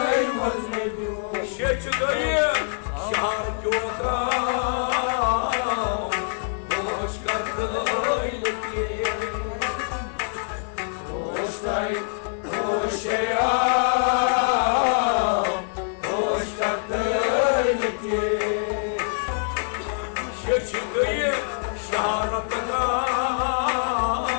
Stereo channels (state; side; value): silent; right; 60 dB below the other